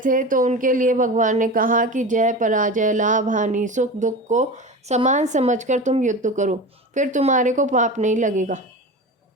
तो उनके लिए भगवान ने कहा कि जय पराजय, लाभ हानि, सुख दुख को समान समझकर तुम युद्ध करो, फिर तुम्हारे को पाप नहीं लगेगा।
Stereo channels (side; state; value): both; normal; correlation 0.29